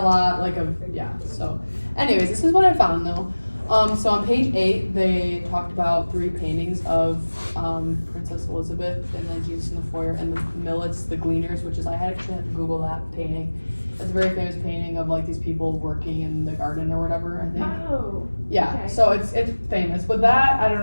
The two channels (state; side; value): inverted; both; correlation -1.00